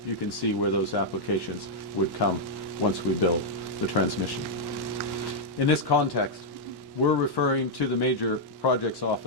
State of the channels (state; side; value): late; right; 1.1 ms